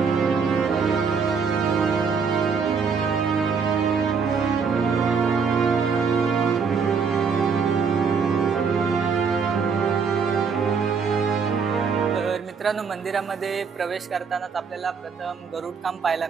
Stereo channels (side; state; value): left; quieter; 5.7 dB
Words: तर मित्रांनो, मंदिरामध्ये प्रवेश करतानाच आपल्याला प्रथम गरुड काम पाहायला